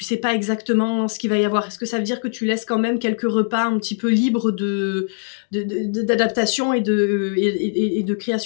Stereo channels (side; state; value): right; silent; digital silence